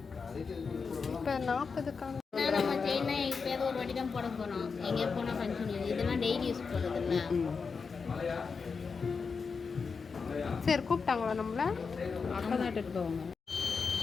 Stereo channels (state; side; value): quieter; right; 5.2 dB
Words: இப்போ 40க்கான நம்ம செயினா எப்பயாவது ஒரு வாட்டி தான் போட போகிறோம். எங்கேயா போனால் ஃபங்க்ஷன் இதெல்லாம் டெய்லி யூஸ் பண்ணுறதில்ல. சரி கூப்பிட்டாங்களா நம்மள? அக்கா தான் எடுத்துட்டு போவாங்க.